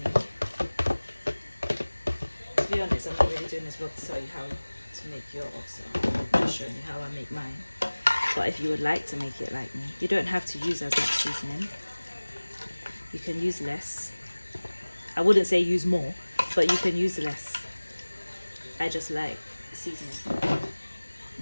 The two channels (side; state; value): both; inverted; correlation -1.00